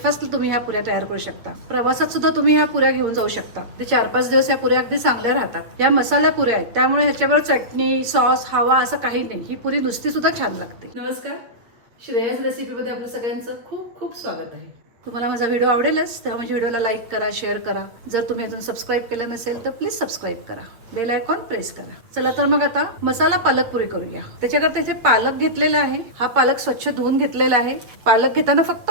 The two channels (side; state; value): left; late; 8.4 ms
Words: तुम्ही ह्या पुऱ्या तयार करू शकता, प्रवासात सुद्धा तुम्ही ह्या पुऱ्या घेऊन जाऊ शकता। ते 4-5 दिवस या पुऱ्या अगदी चांगल्या राहतात। या मसाला पुऱ्या आहेत त्यामुळे ह्याच्यावर चटणी, सॉस, हवा असं काही नाही। ही पुरी नुसती सुद्धा छान लागते। नमस्कार, श्रेयस रेसिपीमध्ये आपलं सगळ्यांचं खूप खूप स्वागत आहे। तुम्हाला माझा व्हिडिओ आवडेलच तेव्हा माझ्या व्हिडिओला लाईक करा, शेअर करा। जर तुम्ही अजून सबस्क्राईब केलं नसेल तर प्लीज सबस्क्राईब करा, बेल आयकॉन प्रेस करा। चला तर मग आता मसाला पालक पुरी करूया। त्याच्याकरता इथे पालक घेतलेला आहे। हा पालक स्वच्छ धुवून घेतलेला आहे। पालक घेताना फक्त